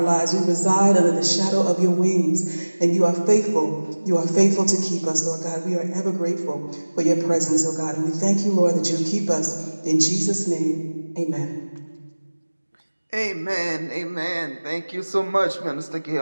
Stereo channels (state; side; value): inverted; both; correlation -1.00